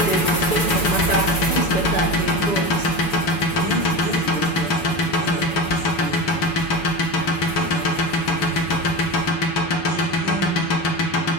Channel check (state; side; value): late; right; 7.0 ms